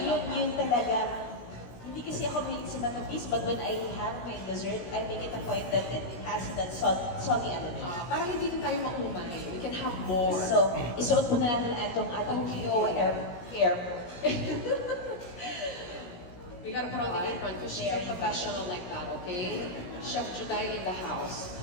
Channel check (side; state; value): right; late; 17 ms